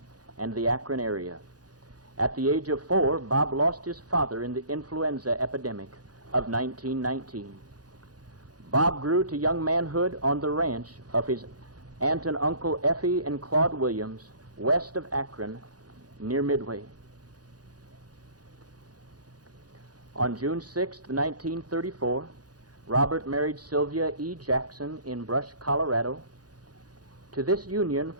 and the Akron area. At the age of 4, Bob lost his father in the influenza epidemic of 1919. Bob grew to young manhood on the ranch of his aunt and uncle Effie and Claude Williams, west of Akron, near Midway. On June 6, 1934, Robert married Sylvia E. Jackson in Brush, Colorado. To this union,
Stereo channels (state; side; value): late; left; 0.69 ms